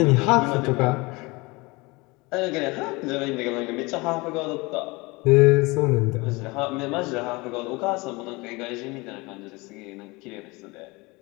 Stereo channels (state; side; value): quieter; right; 24.5 dB